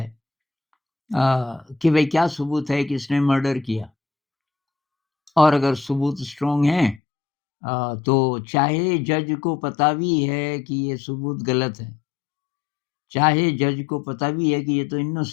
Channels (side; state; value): right; drops out; at 7.0 s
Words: कि भई क्या सबूत है कि इसने मर्डर किया और अगर सबूत स्ट्रॉन्ग हैं तो चाहे जज को पता भी है कि ये सबूत गलत है, चाहे जज को पता भी है कि ये तो